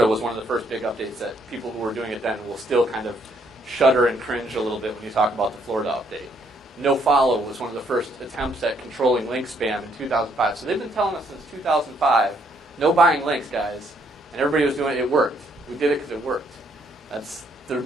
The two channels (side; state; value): both; normal; correlation 0.69